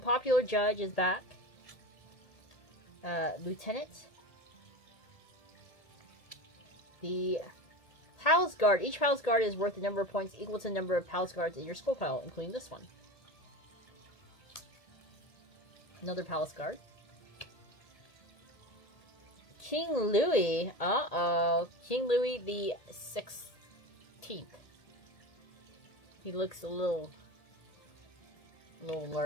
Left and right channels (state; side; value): late; right; 1.8 ms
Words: judge is back. Lieutenant. The Palace Guard. Each Palace Guard is worth the number of points equal to the number of Palace Guards in your school pile, including this one. Another Palace Guard. King Louis. Uh-oh. King Louis the 16th. He looks a little